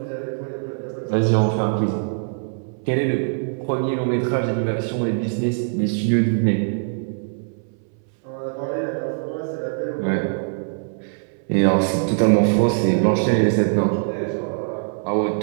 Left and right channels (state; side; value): silent; left; 64 dB below the other